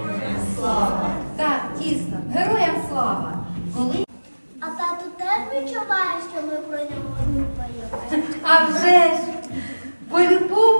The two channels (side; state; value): both; inverted; correlation -1.00